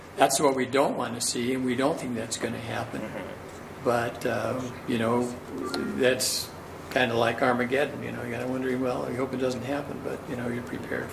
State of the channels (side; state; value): both; identical; correlation 1.00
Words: that's what we don't want to see, and we don't think that's going to happen. But, that's kind of like Armageddon. You got to wonder, well, I hope it doesn't happen, but, you're prepared